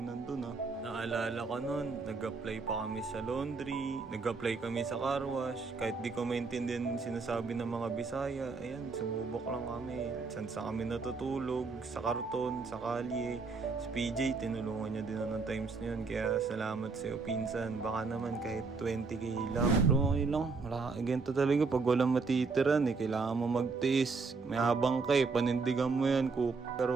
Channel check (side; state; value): left; quieter; 4.4 dB